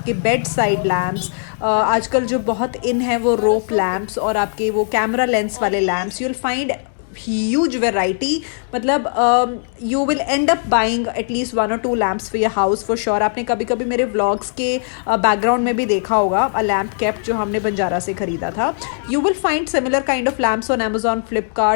बेड साइड लैम्प्स, आजकल जो बहुत इन है वो रोप लैम्प्स और आपके वो कैमरा लेंस वाले lamps, you will find huge variety. मतलब you will end up buying at least 1 or 2 lamps for your house for sure. आपने कभी कभी मेरे vlogs के बैकग्राउंड में भी देखा होगा a lamp kept जो हमने बंजारा से खरीदा था. You will find similar kind of lamps on Amazon,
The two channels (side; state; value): right; silent; digital silence